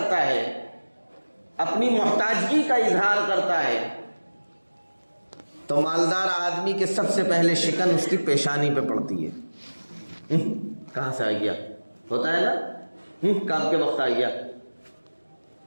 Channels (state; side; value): inverted; both; correlation -1.00